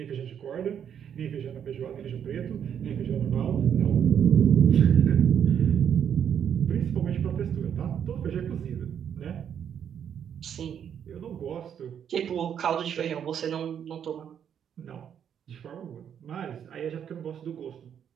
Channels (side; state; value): left; quieter; 8.6 dB